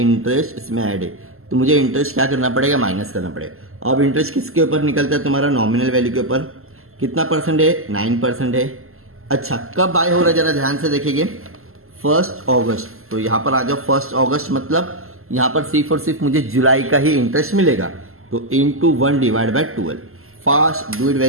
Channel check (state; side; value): late; left; 0.62 ms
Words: इसमें ऐड है, तो मुझे इंटरेस्ट क्या करना पड़ेगा? माइनस करना पड़ेगा। अब इंटरेस्ट किसके ऊपर निकलता है? तुम्हारा नॉमिनल वैल्यू के ऊपर। कितना परसेंट है? 9% है। अच्छा कब बाय हो रहा है जरा ध्यान से देखेंगे, 1 अगस्त। तो यहां पर आ जाओ 1 अगस्त, मतलब यहां पर सिर्फ और सिर्फ मुझे जुलाई का ही इंटरेस्ट मिलेगा, तो into 1 divide by 12। Fast, do it